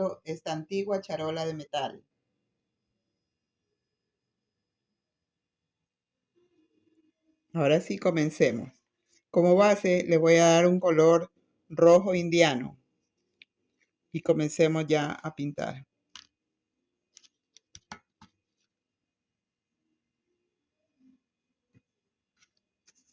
esta antigua charola de metal. Ahora sí, comencemos. Como base le voy a dar un color rojo indiano y comencemos ya a pintar.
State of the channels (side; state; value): both; identical; correlation 1.00